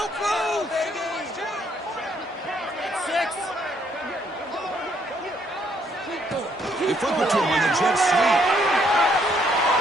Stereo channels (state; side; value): normal; both; correlation 0.69